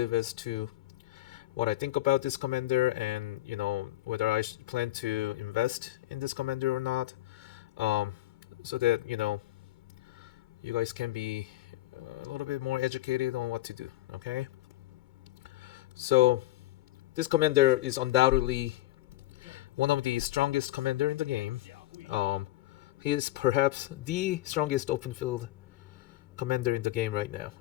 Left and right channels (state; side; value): quieter; right; 16.4 dB